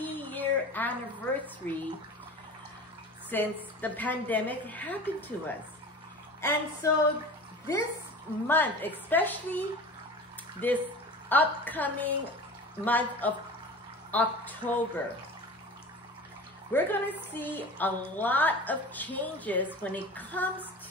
anniversary since the pandemic happened to us. And so this month, especially this upcoming month of October, we're going to see a lot of changes when it comes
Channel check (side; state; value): both; normal; correlation 0.36